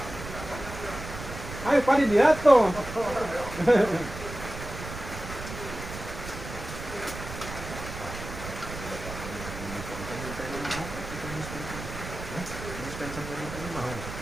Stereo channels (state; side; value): noise; right; rumble, 10 dB below the sound